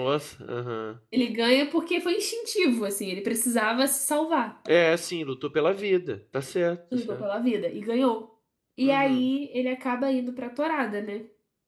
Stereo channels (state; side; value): identical; both; correlation 1.00